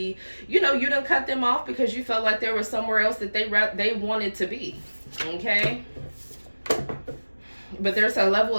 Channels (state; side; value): inverted; both; correlation -1.00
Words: you know, you done cut them off because you felt like there was somewhere else that they wanted to be. Okay? But there's a level